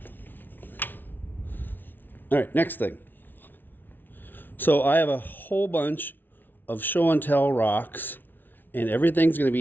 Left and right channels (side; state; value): right; late; 0.092 ms